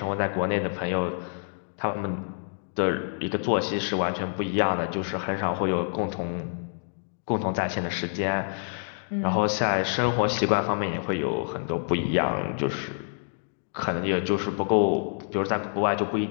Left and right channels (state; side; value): silent; right; digital silence